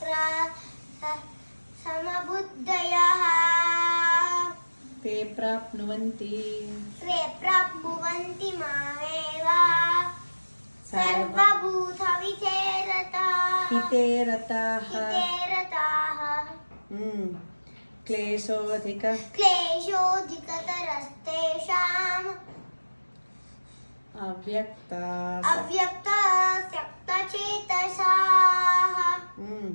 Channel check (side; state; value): both; inverted; correlation -1.00